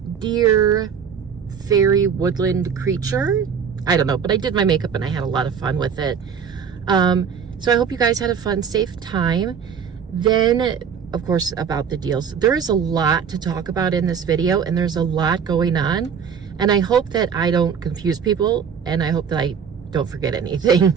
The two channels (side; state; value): left; quieter; 7.1 dB